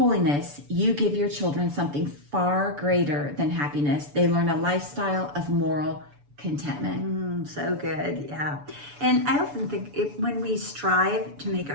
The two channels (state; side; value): late; left; 7.0 ms